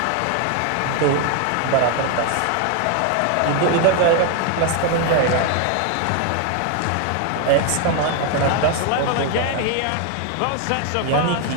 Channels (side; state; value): both; different; correlation 0.01